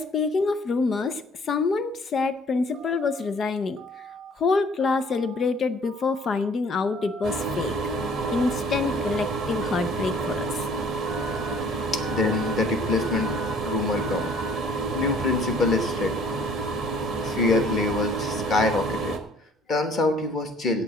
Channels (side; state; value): both; normal; correlation 0.56